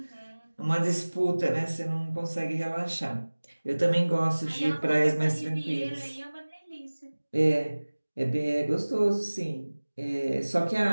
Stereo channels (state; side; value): inverted; both; correlation -1.00